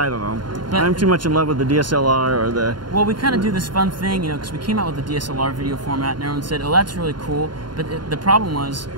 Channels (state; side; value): late; left; 0.71 ms